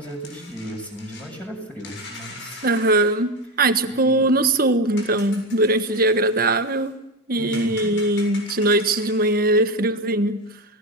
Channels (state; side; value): normal; both; correlation 0.15